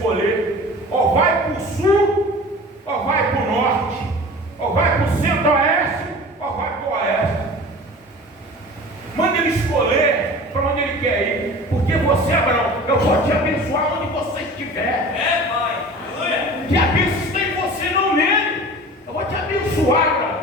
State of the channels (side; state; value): both; normal; correlation 0.39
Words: ou vai para o sul, ou vai para o norte, ou vai para o centro-oeste, ou vai para o oeste. Manda ele escolher para onde ele quer ir, porque você, Abraão, eu vou te abençoar onde você estiver. É, pai. Aleluia. Que a bênção está em você, não nele. Eu vou te abençoar, Abraão.